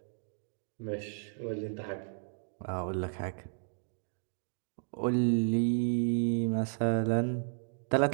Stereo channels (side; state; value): left; silent; digital silence